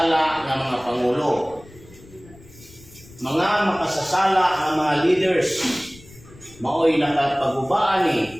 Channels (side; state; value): left; noise; rumble, 22 dB below the sound